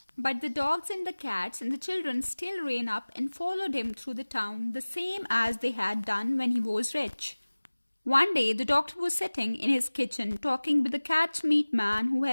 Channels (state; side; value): inverted; both; correlation -1.00